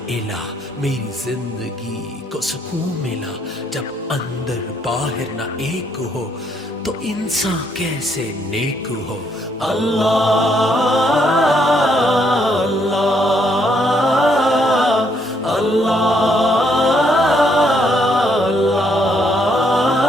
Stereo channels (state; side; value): normal; both; correlation 0.71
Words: الہ میری زندگی کو سکون ملا۔ جب اندر باہر نہ ایک ہو تو انسان کیسے نیک ہو۔